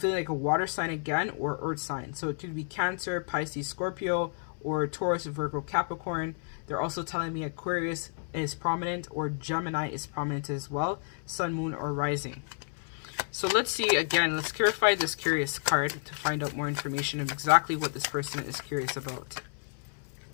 like a water sign again, or earth sign. So it could be Cancer, Pisces, Scorpio, or Taurus, Virgo, Capricorn. They're also telling me Aquarius is prominent, or Gemini is prominent as well, Sun, Moon, or Rising. So let's see, again, let's clarify this curious card to find out more information of exactly what this person is curious about.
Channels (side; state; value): right; silent; 57 dB below the other